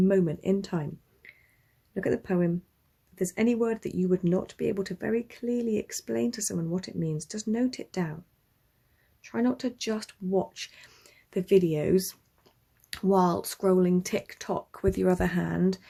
in time. Look at the poem. If there's any word that you would not be able to very clearly explain to someone what it means, just note it down. Try not to just watch the videos while scrolling TikTok with your other hand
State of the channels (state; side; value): identical; both; correlation 1.00